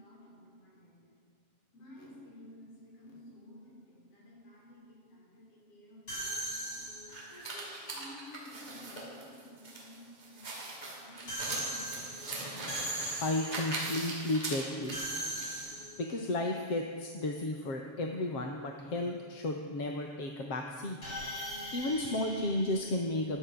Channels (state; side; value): late; right; 7.3 ms